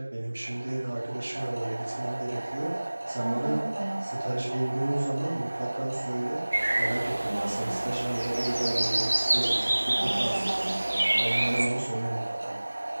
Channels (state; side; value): inverted; both; correlation -1.00